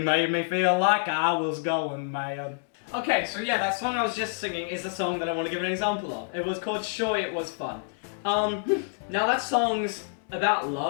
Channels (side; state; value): right; silent; digital silence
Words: made me feel like I was going mad. Okay, so yeah, that song I was just singing is the song that I want to give an example of. It was called Sure It Was Fun. Now that song's about